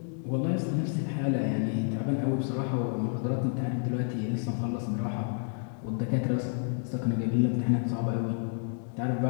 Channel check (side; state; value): right; silent; 57 dB below the other